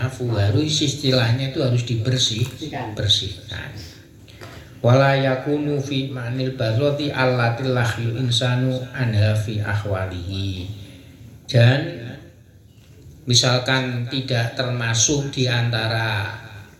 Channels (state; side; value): identical; both; correlation 1.00